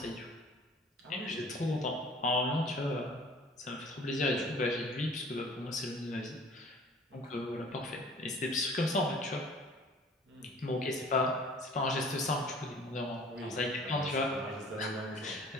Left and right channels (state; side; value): normal; both; correlation 0.49